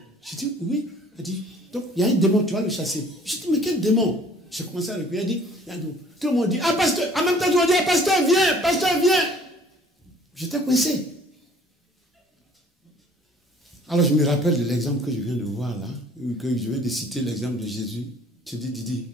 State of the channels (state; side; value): normal; both; correlation 0.54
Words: Je dis, oui. Elle dit, donc il y a un démon, tu vas le chasser. Je dis, mais quel démon? J'ai commencé à le prier. Elle dit, tout le monde dit, ah pasteur, en même temps tu vas dire, ah pasteur, viens, pasteur, viens. J'étais coincé. Alors je me rappelle de l'exemple que je viens de voir là, que je viens de citer l'exemple de Jésus. Je dis, Didi,